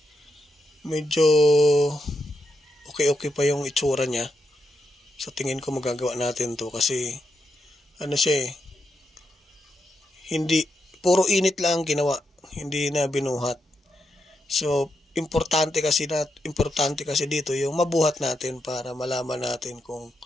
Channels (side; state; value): both; normal; correlation 0.83